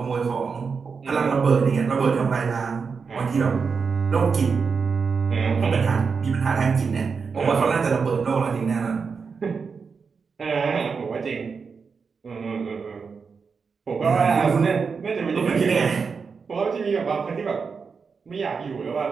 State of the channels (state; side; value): quieter; left; 5.4 dB